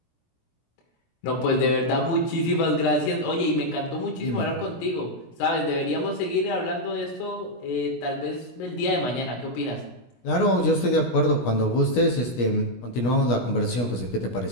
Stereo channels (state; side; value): late; right; 17 ms